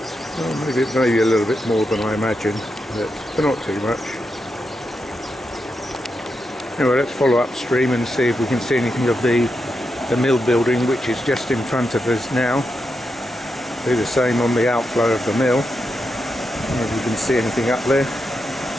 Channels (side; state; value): both; normal; correlation 0.86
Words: Well, maybe a little bit more than I imagined, but not too much. Anyway, let's follow upstream and see if we can see anything of the mill building, which is just in front of us now. Do the same on the outflow of the mill. I don't know if you can see anything up there.